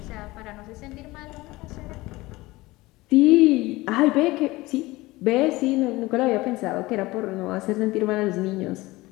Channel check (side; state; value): right; quieter; 20.2 dB